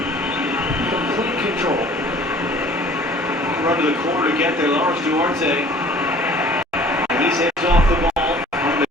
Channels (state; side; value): normal; both; correlation 0.50